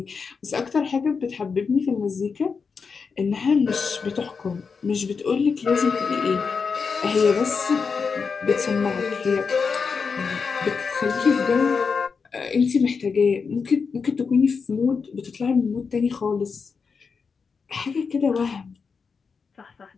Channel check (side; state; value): right; quieter; 5.4 dB